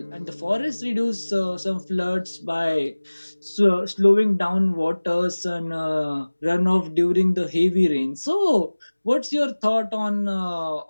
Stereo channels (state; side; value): inverted; both; correlation -1.00